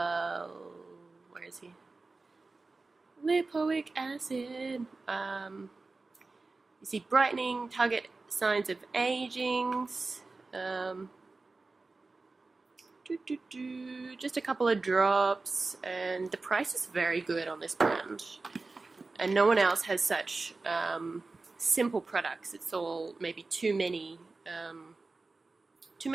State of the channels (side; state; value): left; quieter; 3.6 dB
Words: where is he? Lipoic acid. You see brightening, target signs of aging. Just a couple of drops, and the price is very good on this brand. And no one else has such simple products. It's all maybe too many